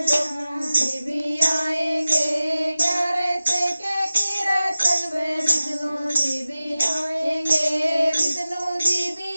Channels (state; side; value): inverted; both; correlation -0.95